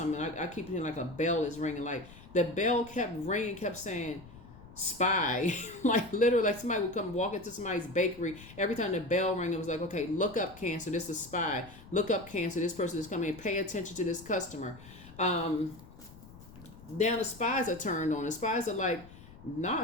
I keep hearing like a bell is ringing. Like the bell kept ringing, kept saying spy. Like literally, like somebody would come walk into somebody's bakery. Every time the bell rang, it was like, okay, look up, Cancer. This is a spy. Look up, Cancer. This person is coming. Pay attention to this customer. Now the spies are turned on. The spies are like, nah,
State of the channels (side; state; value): left; noise; rumble, 19 dB below the sound